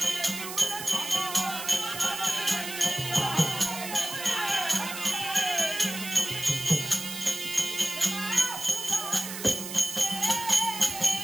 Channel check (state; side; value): noise; right; hiss, 8 dB below the sound